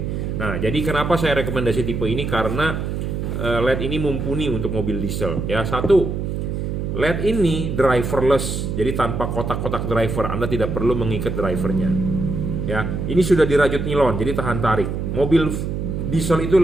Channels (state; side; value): noise; right; hum, 3 dB below the sound